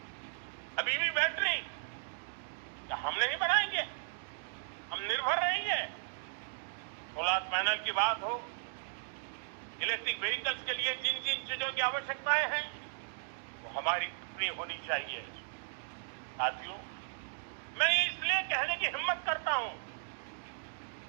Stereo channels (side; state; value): left; silent; digital silence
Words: अब ईवी बैटरी क्या हम नहीं बनाएंगे? हम निर्भर रहेंगे। सोलर पैनल की बात हो, इलेक्ट्रिक व्हीकल्स के लिए जिन जिन चीजों की आवश्यकताएं हैं वो हमारी अपनी होनी चाहिए। साथियों, मैं इसलिए कहने की हिम्मत करता हूं